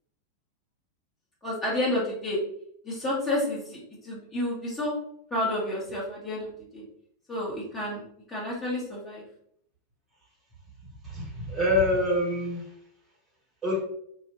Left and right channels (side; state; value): both; normal; correlation 0.05